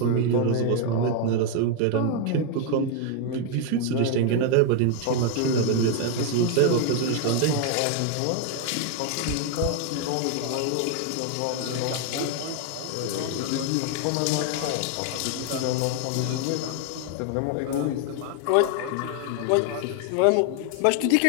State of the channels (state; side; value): different; both; correlation 0.01